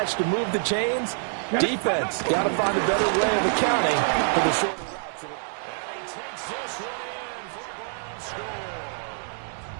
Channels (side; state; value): left; silent; 61 dB below the other